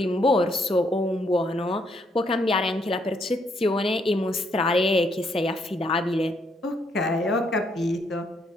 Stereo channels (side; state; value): both; normal; correlation 0.73